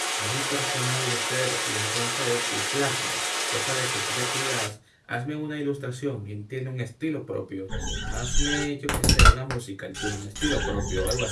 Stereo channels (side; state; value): both; identical; correlation 1.00